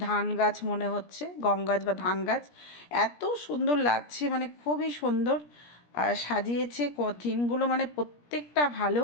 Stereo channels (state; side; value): late; right; 17 ms